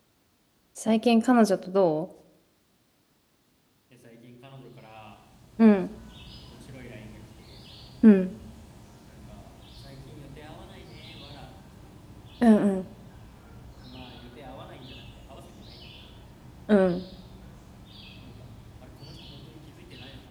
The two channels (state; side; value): identical; both; correlation 1.00